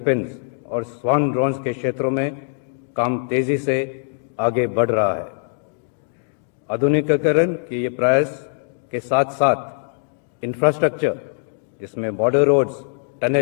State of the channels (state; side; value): silent; right; digital silence